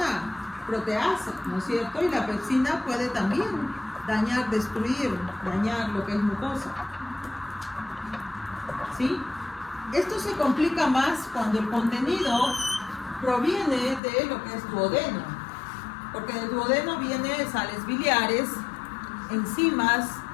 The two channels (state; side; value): drops out; right; at 14.0 s